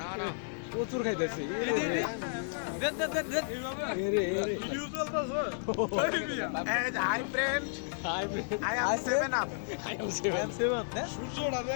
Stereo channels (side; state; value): right; silent; 56 dB below the other